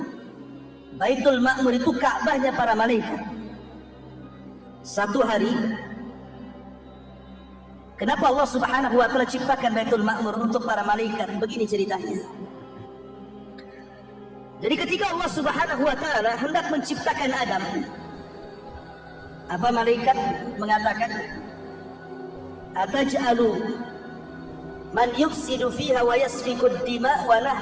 Baitul Ma'mur itu Ka'bahnya para malaikat. Satu hari, kenapa Allah Subhanahu wa Ta'ala ciptakan Baitul Ma'mur untuk para malaikat? Begini ceritanya. Jadi ketika Allah Subhanahu wa Ta'ala hendak menciptakan Adam, apa malaikat mengatakan, ataj'alu man yufsidu fiha wa yasfiku ad-dima wa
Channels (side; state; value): both; identical; correlation 1.00